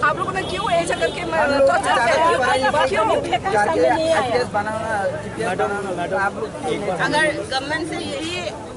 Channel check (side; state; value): both; identical; correlation 1.00